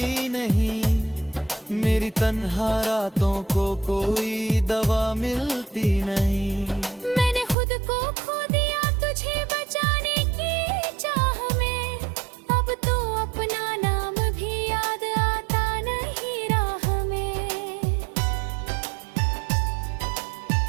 नहीं, मेरी तन्हा रातों को कोई दवा मिलती नहीं। मैंने खुद को खो दिया तुझे बचाने की चाह में, अब तो अपना नाम भी याद आता नहीं राह में।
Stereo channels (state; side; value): drops out; left; at 7.6 s